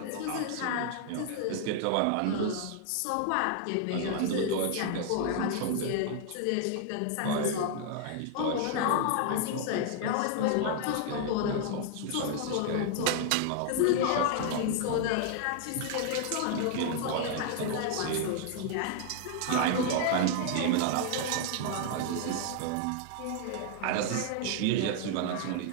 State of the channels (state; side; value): different; both; correlation 0.00